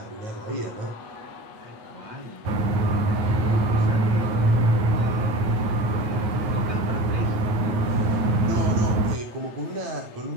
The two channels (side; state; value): left; late; 9.4 ms